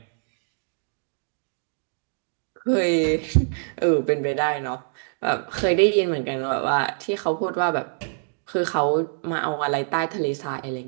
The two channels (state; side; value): silent; left; digital silence